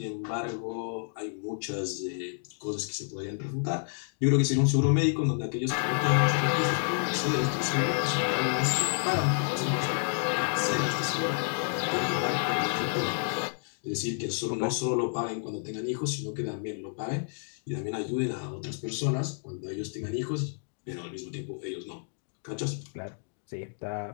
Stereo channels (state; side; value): silent; right; digital silence